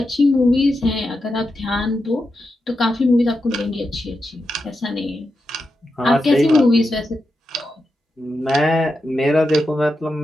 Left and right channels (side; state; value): both; normal; correlation 0.88